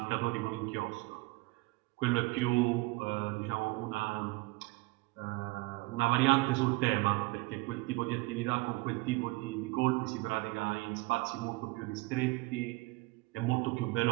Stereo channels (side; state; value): left; quieter; 23.4 dB